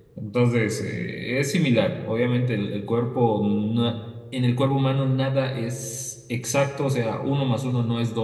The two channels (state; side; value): identical; both; correlation 1.00